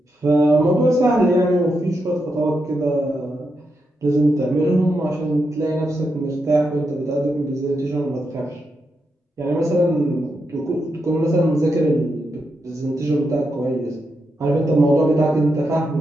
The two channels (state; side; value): normal; both; correlation 0.84